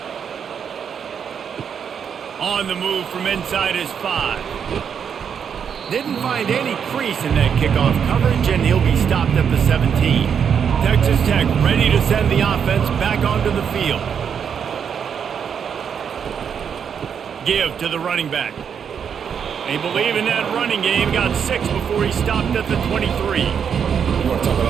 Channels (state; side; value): quieter; left; 7.4 dB